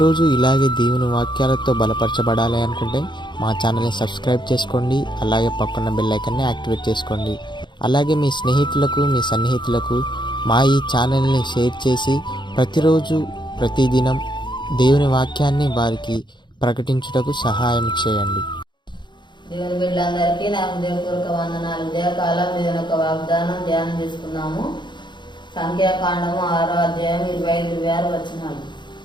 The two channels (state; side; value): late; right; 0.22 ms